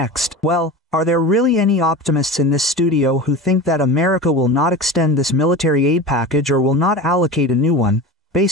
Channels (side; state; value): both; normal; correlation 0.30